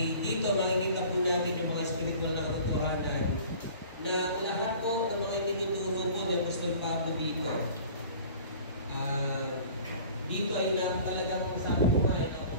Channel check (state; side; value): inverted; both; correlation -0.46